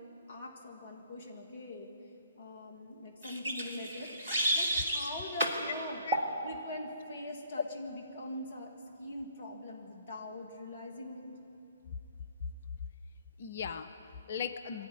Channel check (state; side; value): inverted; both; correlation -0.61